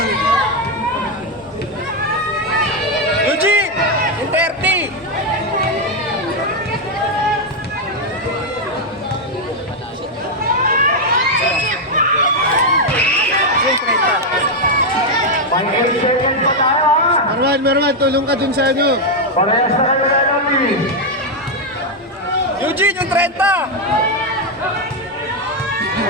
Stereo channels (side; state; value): both; normal; correlation 0.02